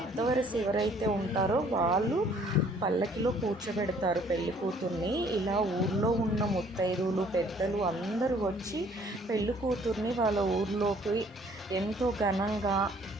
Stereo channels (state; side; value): normal; both; correlation 0.59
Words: ఎవరైతే ఉంటారో వాళ్ళు పల్లకిలో కూర్చోబెడతారు పెళ్లి కూతుర్ని. ఇలా ఊర్లో ఉన్న ముత్తైదువులు పెద్దలు అందరూ వచ్చి పెళ్లి కూతుర్ని వాళ్ళ ఊర్లోకి ఎంతో ఘనంగా